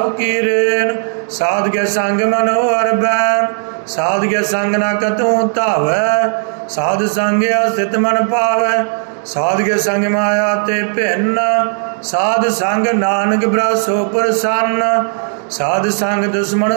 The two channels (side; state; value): left; silent; digital silence